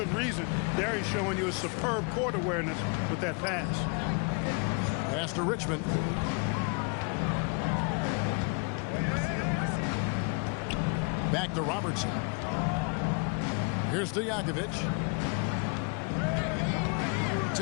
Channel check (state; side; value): quieter; right; 33.8 dB